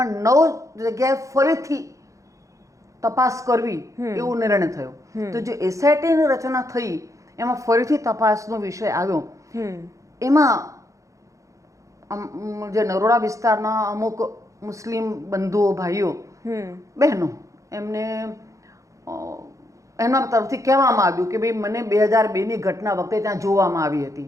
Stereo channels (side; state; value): left; late; 0.15 ms